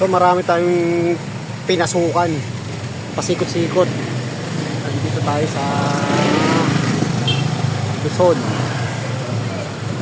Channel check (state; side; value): identical; both; correlation 1.00